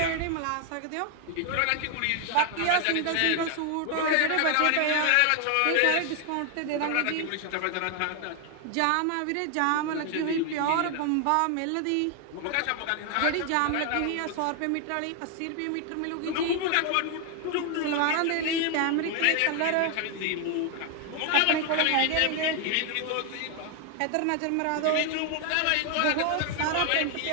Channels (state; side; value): different; both; correlation 0.00